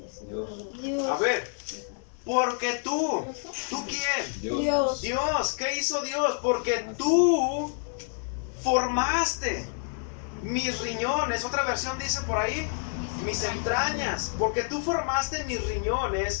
Dios. A ver, porque ¿tú quién? Dios. Dios, ¿qué hizo Dios? Porque tú formaste mis riñones. Otra versión dice por ahí, mis entrañas. Porque tú formaste mis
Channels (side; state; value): right; silent; 59 dB below the other